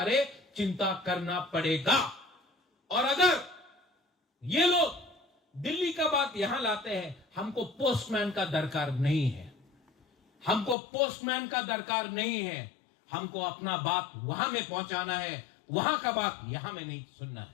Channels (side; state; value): right; drops out; at 10.8 s